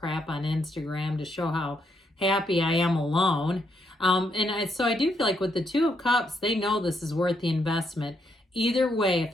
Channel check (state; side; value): normal; both; correlation 0.77